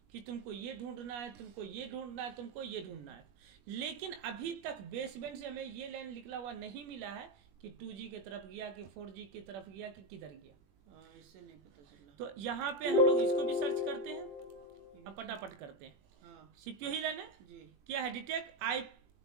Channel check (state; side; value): late; left; 21 ms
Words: कि तुमको ये ढूंढना है, तुमको ये ढूंढना है, तुमको ये ढूंढना है। लेकिन अभी तक बेसबैंड से हमें ये लाइन निकला हुआ नहीं मिला है कि 2G की तरफ गया कि 4G की तरफ गया कि किधर गया। हाँ इससे नहीं पता चला। तो यहाँ पे हम लोग इसको भी सर्च करते हैं, अब फटाफट करते हैं। हाँ सीपीयू ही लाइन है। जी क्या है? डिटेक्ट आई